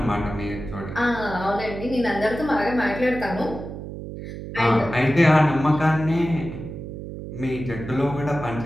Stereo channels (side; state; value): right; noise; hum, 9 dB below the sound